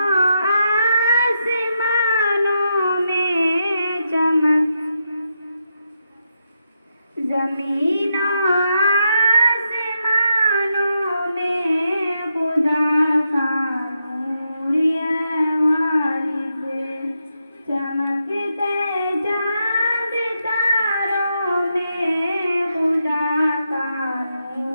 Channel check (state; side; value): inverted; both; correlation -0.83